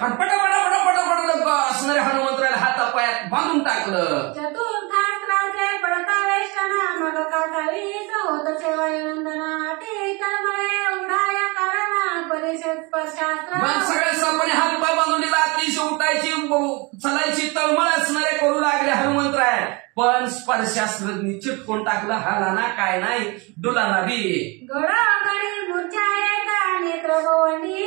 पटापटा असणाऱ्या हनुमंतराला हातापायात बांधून टाकलं. चतुर्थास्त्राचे पडता वेष्टना मग काकावीच होत सेवानंदना ते तळमळे उघडाया कारणा परिषद स्पर्शास्त्र. मग सगळ्या सापाने हातपाय बांधून दिला. अतिशय उठायची चलायची तळमळ असणारे करू लागले हनुमंतराय. पण स्पर्शास्त्रज्ञ चिटकून टाकलं. हालाना काय नाही डुलाना बी. गडगडी मूर्छा येता नेत्र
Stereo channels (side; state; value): left; quieter; 27.6 dB